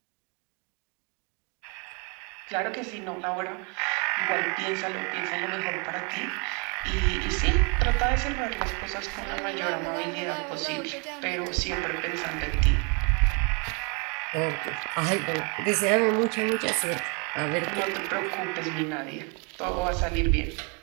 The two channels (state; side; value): quieter; left; 34.3 dB